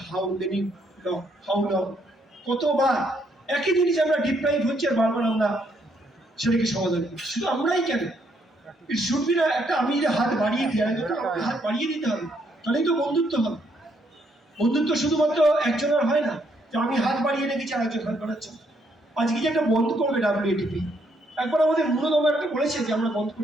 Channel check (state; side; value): normal; both; correlation 0.72